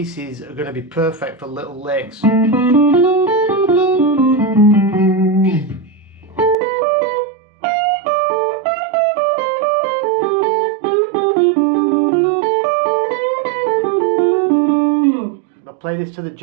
are going to be perfect for little licks. I'll play this to the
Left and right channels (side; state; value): left; drops out; at 6.6 s